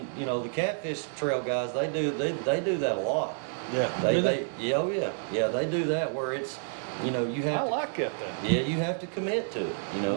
the catfish trail guys, they do that a lot. Yeah. They they do that where it's you have I to like it then. yeah, you have to commit to it,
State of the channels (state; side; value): silent; left; 58 dB below the other